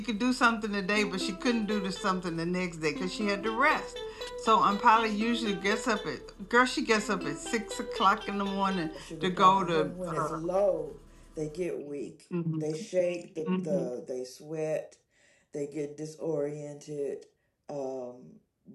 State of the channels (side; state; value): both; identical; correlation 1.00